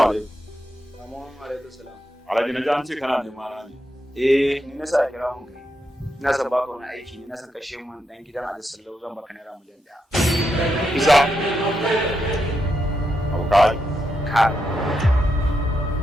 alaikum. Amma alaikum salam. Alhaji na ji an ce kana nema na ne. Ni na sa kira mun kai. Ina son baka wani aiki ne, na san kashe mun dan gidan Ali Sallau zan baka naira miliyan 1. Kisa. Aukai. Ka.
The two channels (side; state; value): both; normal; correlation 0.83